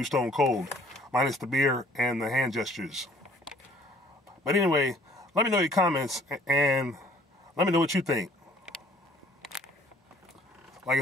Stone Cold, minus the beer and the hand gestures. But anyway, let me know your comments and let me know what you think. Like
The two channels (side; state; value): both; normal; correlation 0.58